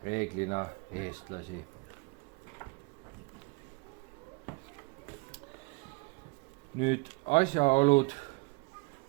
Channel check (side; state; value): left; quieter; 28.3 dB